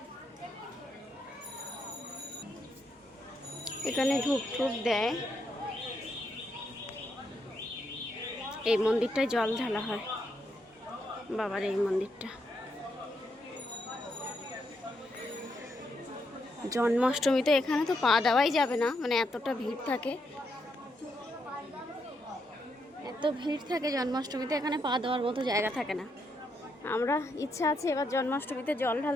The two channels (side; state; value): both; normal; correlation 0.79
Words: এখানে ধূপ টুপ দেয়, এই মন্দিরটায় জল ঢালা হয় বাবার, এই মন্দিরটা। জন্মাষ্টমীতে এখানে তো পা দেওয়াই যাবে না, মানে এতটা ভিড় থাকে, এত ভিড় থাকে জন্মাষ্টমীতে, এখানে পা দেওয়ার মতো জায়গা থাকে না। আমরা ইচ্ছা আছে এবার জন্মাষ্টমীতে জল